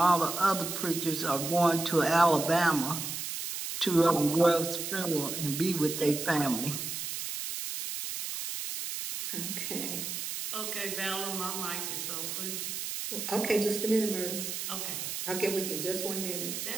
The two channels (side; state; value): right; noise; hiss, 5 dB below the sound